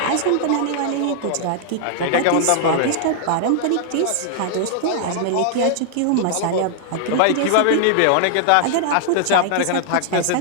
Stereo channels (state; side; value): different; both; correlation 0.00